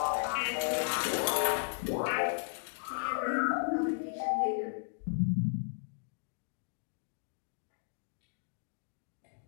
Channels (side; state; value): right; silent; digital silence